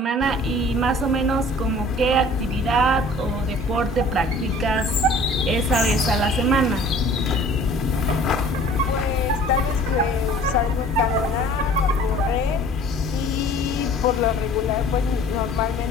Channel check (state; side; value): normal; both; correlation 0.49